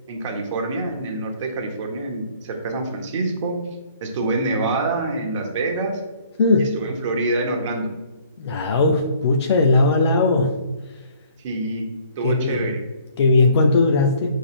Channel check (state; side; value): inverted; both; correlation -0.58